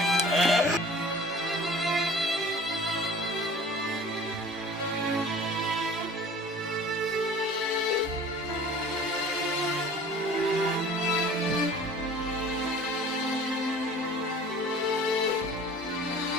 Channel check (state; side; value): normal; both; correlation 0.45